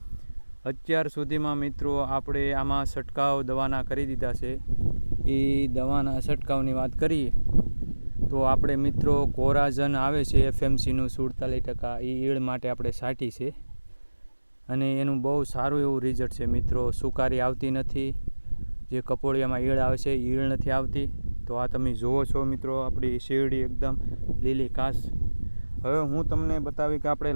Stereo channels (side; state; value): both; inverted; correlation -1.00